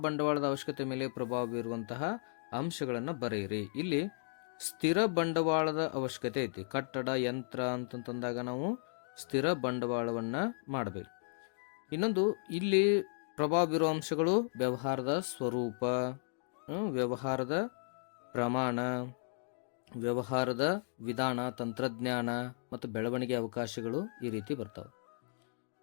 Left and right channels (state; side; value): silent; right; digital silence